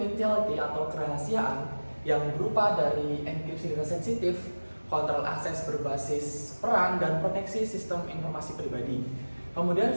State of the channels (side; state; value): both; inverted; correlation -1.00